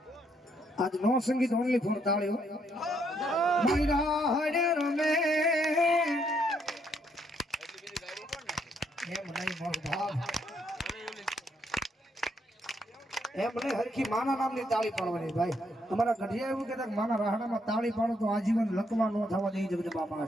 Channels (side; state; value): both; normal; correlation 0.73